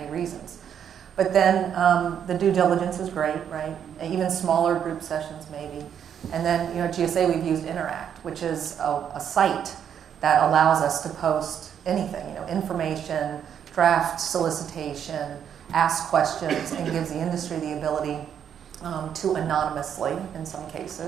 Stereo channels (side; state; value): left; quieter; 8.7 dB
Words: reasons. But then the due diligence is great, right? Even smaller group sessions maybe. And then, at GSA we've used Interact, which is a site that allows us to post anything, information, draft solicitation, ask questions, and gives the industry the ability to anonymously, in some